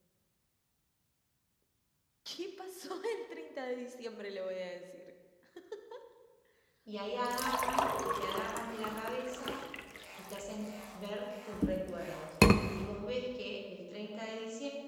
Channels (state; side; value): identical; both; correlation 1.00